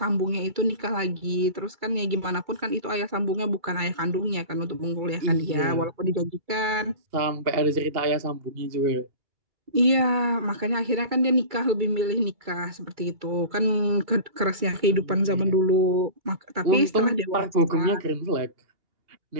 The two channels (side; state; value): left; late; 2.3 ms